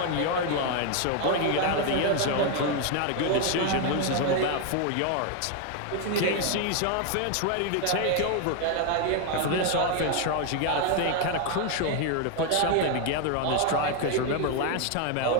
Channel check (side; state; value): both; different; correlation 0.01